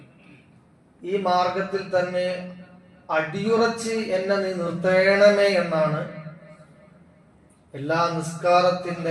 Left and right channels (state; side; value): identical; both; correlation 1.00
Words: ഈ മാർഗത്തിൽ തന്നെ അടിയുറച്ച് എന്നെ നീ നിർത്തേണമേ എന്നാണ് എല്ലാ